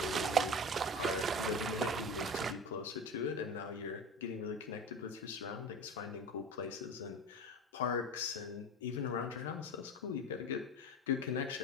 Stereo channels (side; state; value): both; normal; correlation 0.30